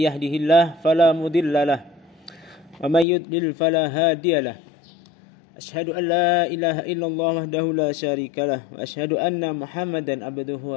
yahdihillahu fala mudhillalah wa may yudlil fala hadiyalah. Asyhadu an la ilaha illallah wahdahu la syarikalah wa asyhadu anna Muhammadan abduhu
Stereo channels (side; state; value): right; drops out; at 3.1 s